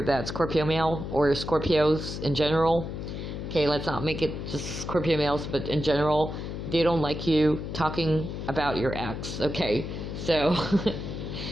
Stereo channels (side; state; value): left; noise; hum, 6 dB below the sound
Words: that Scorpio male, or Scorpios in general, okay, let's not make it just Scorpio males, but in general, they don't like you talking about your ex, okay? So,